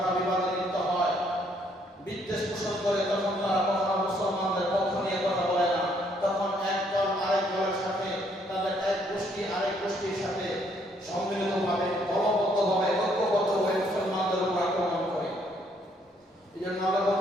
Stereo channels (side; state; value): both; normal; correlation 0.68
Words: বিবাদে লিপ্ত হয়, বিদ্বেষ পোষণ করে, তখন তারা কখনো মুসলমানদের পক্ষ নিয়ে কথা বলে না। তখন এক দল আরেক দলের সাথে, তাদের এক গোষ্ঠী আরেক গোষ্ঠীর সাথে সম্মিলিতভাবে, দলবদ্ধভাবে, ঐক্যবদ্ধভাবে মুসলমানদের উপর আক্রমণ করে। এই জন্য আল্লাহ